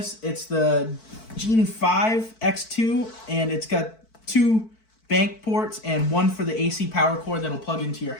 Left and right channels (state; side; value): late; right; 4.5 ms